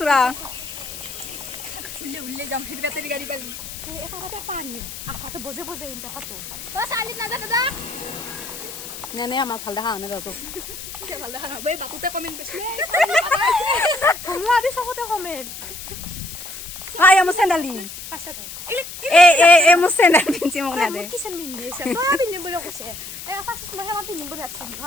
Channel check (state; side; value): noise; left; hiss, 11 dB below the sound